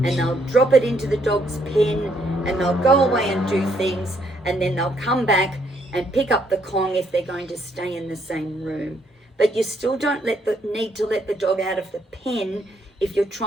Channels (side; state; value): both; normal; correlation 0.71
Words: and they'll drop it into the dog's pen, and they'll go away and do things, and then they'll come back and pick up the Kong if they're going to stay in the same room. But you still don't need to let the dog out of the pen if you're